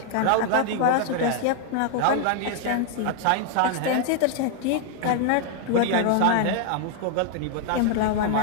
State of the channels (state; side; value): different; both; correlation 0.00